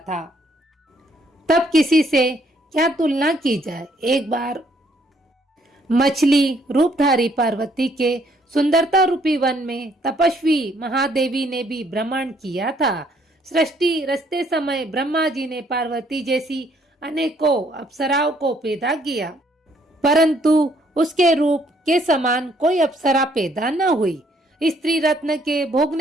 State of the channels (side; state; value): both; normal; correlation 0.66